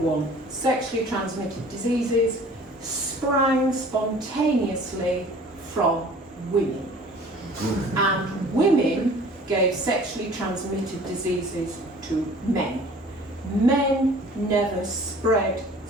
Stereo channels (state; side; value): normal; both; correlation 0.48